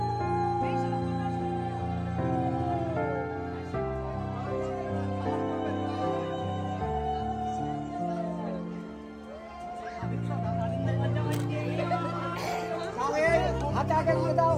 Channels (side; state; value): both; identical; correlation 1.00